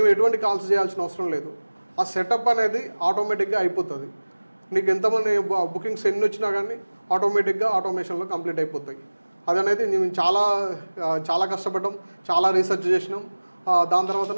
ఎటువంటి కాల్స్ చేయాల్సిన అవసరం లేదు. ఆ సెటప్ అనేది ఆటోమేటిక్గా అయిపోతుంది. నీకు ఎంతమంది బుకింగ్స్ ఎన్ని వచ్చినా కానీ ఆటోమేటిక్గా ఆటోమేషన్లో కంప్లీట్ అయిపోతాయి. అదనేది మేము చాలా కష్టపడ్డాం, చాలా రీసెర్చ్ చేసినాం. దాని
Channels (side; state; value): both; inverted; correlation -1.00